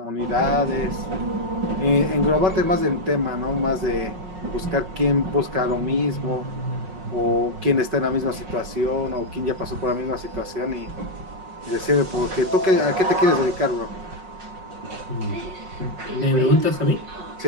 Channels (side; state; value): left; late; 5.3 ms